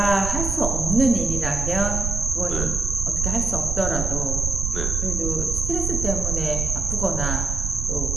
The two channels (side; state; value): right; noise; rumble, 2 dB below the sound